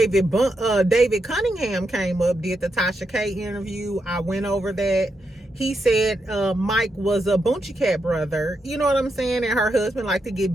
Cunningham came up, did the Tasha K interview. I went over that. He said Mike was a Boonchie Cat brother. You know what I'm saying? And her husband liked to get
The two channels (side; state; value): both; normal; correlation 0.83